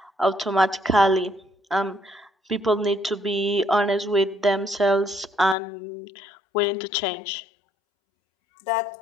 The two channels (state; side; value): drops out; right; at 5.6 s